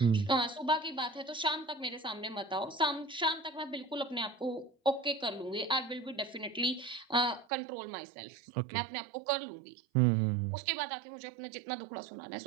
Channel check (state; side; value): drops out; left; at 7.5 s